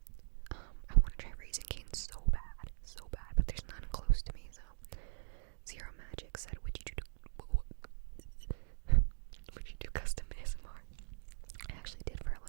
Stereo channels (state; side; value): silent; left; digital silence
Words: I want to try Raising Cane's so bad, but there's none close to me, so. Zero Magic said, would you do custom ASMR? I actually did for a